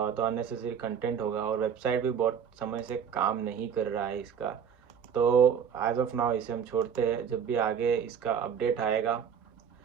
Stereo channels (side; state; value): left; quieter; 7.7 dB